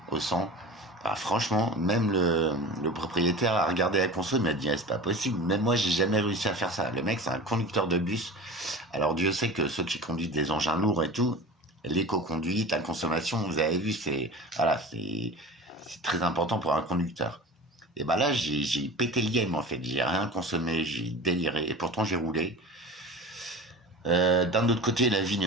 au 100. Ah, franchement, même le propriétaire a regardé la conso, il m'a dit, ah, c'est pas possible. Même moi, j'ai jamais réussi à faire ça. Le mec, c'est un conducteur de bus. Alors, Dieu sait que ceux qui conduisent des engins lourds et tout, l'éco-conduite, la consommation, vous avez vu, voilà, c'est très important pour un conducteur. Et bah là, j'ai pété le game, en fait. J'ai rien consommé, j'ai déliré. Et pourtant, j'ai roulé. D'un autre côté, la vie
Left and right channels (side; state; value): both; normal; correlation 0.35